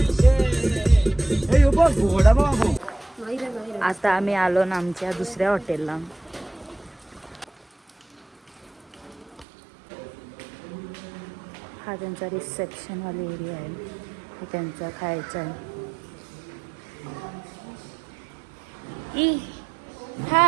आता आम्ही आलो ना आमच्या दुसऱ्या हॉटेलला. हा त्यांचा रिसेप्शनवाली एरिया आहे. हे त्यांचा खायचा आहे.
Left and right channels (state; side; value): drops out; left; at 9.5 s